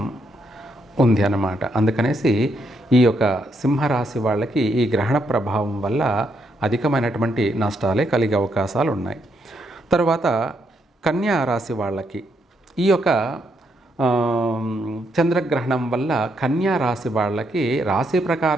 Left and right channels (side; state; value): both; normal; correlation 0.77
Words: ఉంది అన్నమాట. అందుకనేసి ఈ యొక్క సింహరాశి వాళ్ళకి ఈ గ్రహణ ప్రభావం వల్ల అధికమైనటువంటి నష్టాలే కలిగే అవకాశాలు ఉన్నాయి. తర్వాత కన్యా రాశి వాళ్ళకి ఈ యొక్క చంద్రగ్రహణం వల్ల కన్యా రాశి వాళ్ళకి రాశి